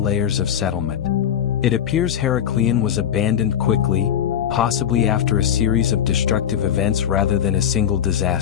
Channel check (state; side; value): quieter; right; 9.4 dB